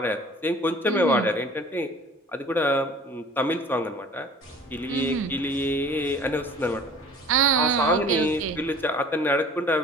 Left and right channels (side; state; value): both; normal; correlation 0.47